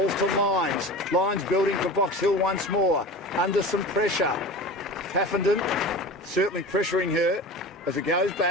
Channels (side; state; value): both; normal; correlation 0.34